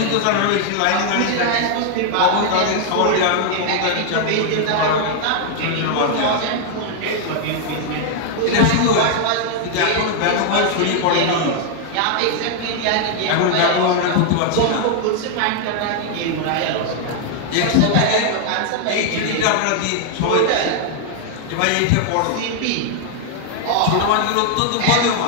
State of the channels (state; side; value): different; both; correlation 0.00